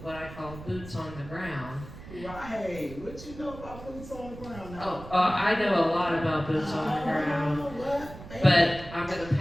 what I call boots on the ground. Right. What you know about boots on the ground now? I know a lot about boots on the ground. What? But I'm going to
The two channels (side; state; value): right; noise; rumble, 14 dB below the sound